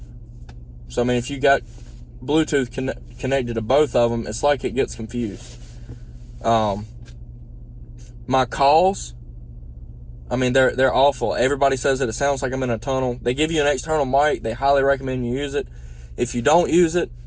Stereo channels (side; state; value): both; identical; correlation 1.00